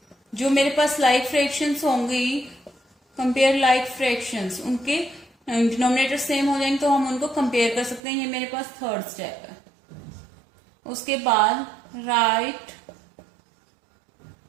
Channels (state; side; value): drops out; left; at 8.0 s